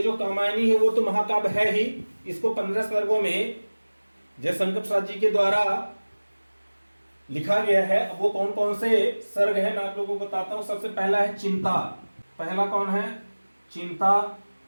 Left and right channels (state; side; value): inverted; both; correlation -1.00